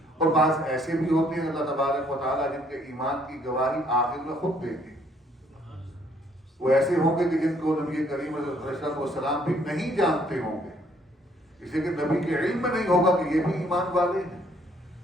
اور بعض ایسے بھی ہوتے ہیں اللہ تبارک و تعالیٰ جن کے ایمان کی گواہی آخر میں خود دیتے ہیں، وہ ایسے ہوں گے کہ جن کو نبی کریم علیہ السلام بھی نہیں جانتے ہوں گے، اس لیے کہ نبی کے علم میں نہیں ہوگا کہ یہ بھی ایمان والے ہیں۔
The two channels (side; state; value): both; normal; correlation 0.65